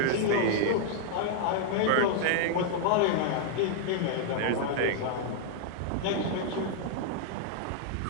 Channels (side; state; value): both; different; correlation -0.01